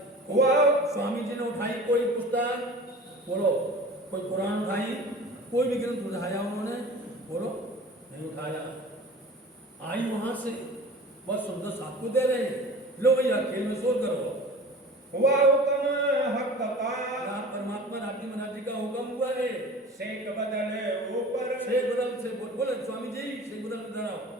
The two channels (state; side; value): normal; both; correlation 0.40